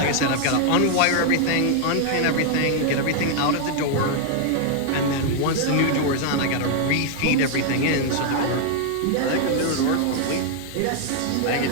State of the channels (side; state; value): both; different; correlation 0.00